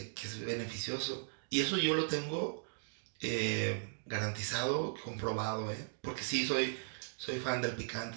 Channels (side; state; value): left; silent; digital silence